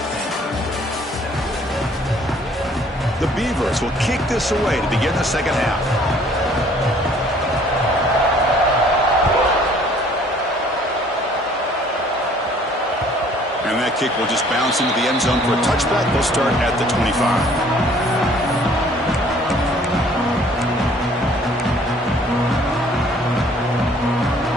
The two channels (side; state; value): both; normal; correlation 0.57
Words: The Beavers will kick this away to begin the second half. And that kick will just bounce into the end zone for a touchback. They'll start at the 25.